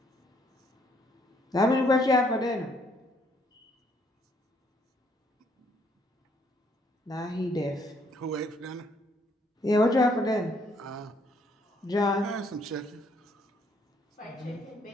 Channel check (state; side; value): normal; both; correlation 0.68